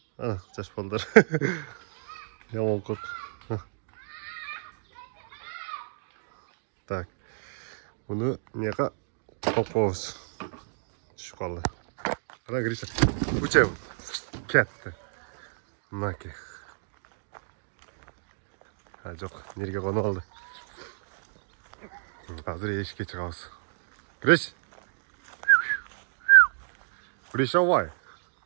Жаш балдар. Яман кот. Так. Буну мияка топобуз. Түшүп калды. Кара Гриша. Учеб. Кетти. Мынаки. Жок, нерге коно алды. Hazır eşik'e çıkağız. Giriş. Giriş avay.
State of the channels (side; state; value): left; silent; digital silence